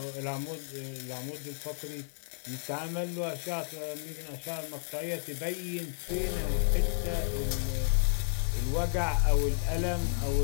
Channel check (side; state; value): right; silent; digital silence